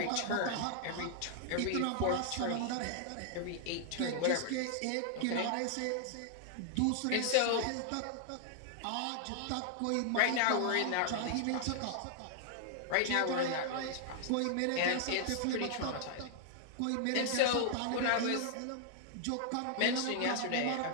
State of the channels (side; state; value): both; different; correlation -0.01